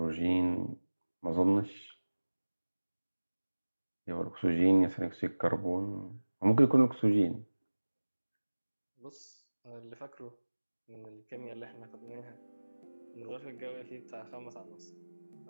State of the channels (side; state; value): both; inverted; correlation -1.00